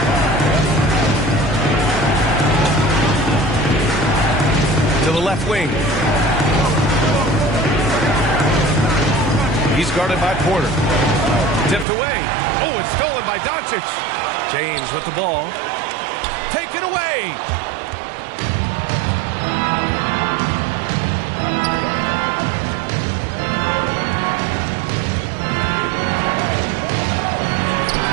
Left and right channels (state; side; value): drops out; left; at 11.9 s